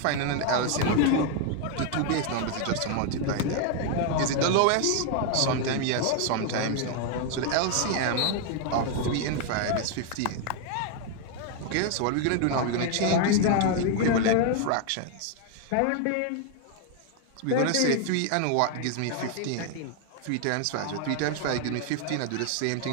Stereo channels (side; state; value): both; different; correlation 0.00